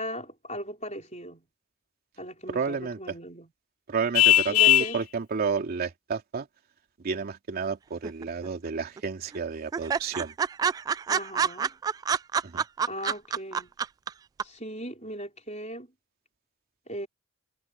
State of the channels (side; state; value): both; normal; correlation 0.15